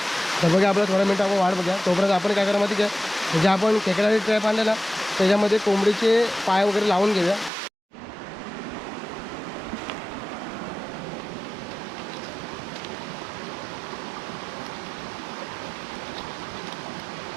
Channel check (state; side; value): drops out; left; at 7.5 s